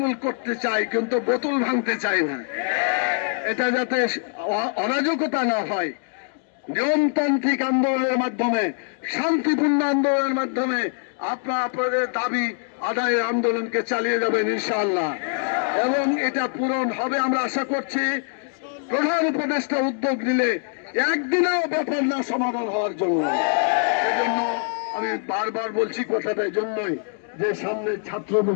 করতে চাই কিন্তু বোতল ভাঙতে চাই না। এটা যাতে অরাজকতা না হয়, নিয়মতান্ত্রিক আন্দোলনের মাধ্যমে, শান্তিপূর্ণ আন্দোলনের মাধ্যমে আপনাদের দাবি আদায়ের আন্দোলনকে চালিয়ে যাবেন ইনশাআল্লাহ, এবং এটা পূরণ হবে আমরা আশা করছি। প্রধান উপদেষ্টা উদ্যোগ নিলে একদিনেও ব্যাপার না সমাধান হওয়ার জন্য। সেজন্য আমি বারবার বলছি কথাটা এই জন্যই যে সামনে ছাত্র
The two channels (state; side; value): silent; right; 57 dB below the other